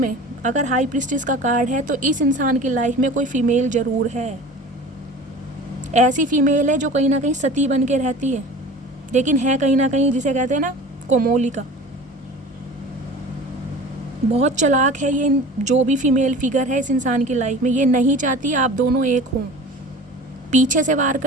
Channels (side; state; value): both; normal; correlation 0.39